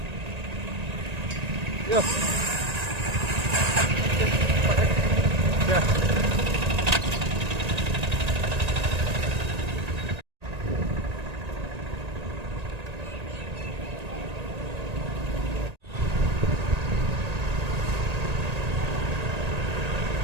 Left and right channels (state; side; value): late; left; 1.9 ms